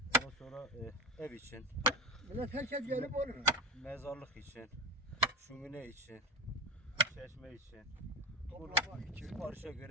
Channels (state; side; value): normal; both; correlation 0.20